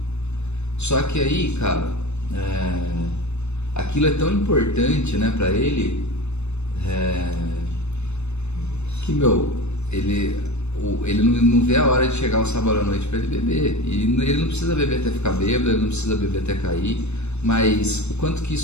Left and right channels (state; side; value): late; right; 0.81 ms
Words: Só que aí, cara, aquilo é tão importante, né, pra ele, que, ele não vê a hora de chegar o sábado à noite para ele beber. E ele não precisa beber até ficar bêbado, ele não precisa beber até cair, mas o quanto que